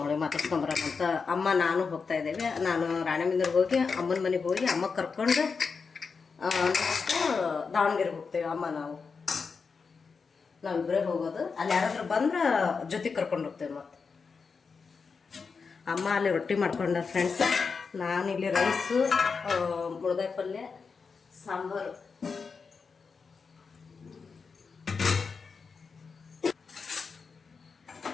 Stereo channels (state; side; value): quieter; right; 5.2 dB